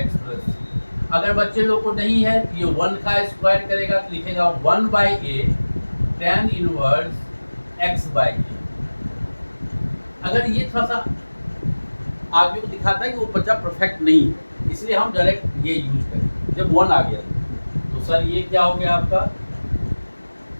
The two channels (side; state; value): both; inverted; correlation -1.00